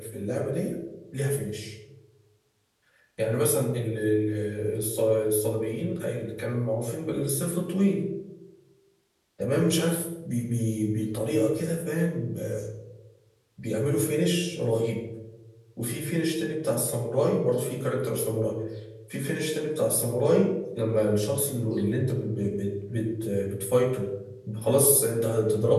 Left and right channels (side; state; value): both; identical; correlation 1.00